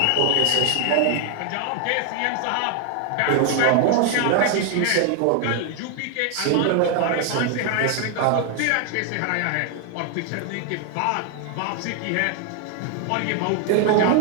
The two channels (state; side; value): different; both; correlation 0.00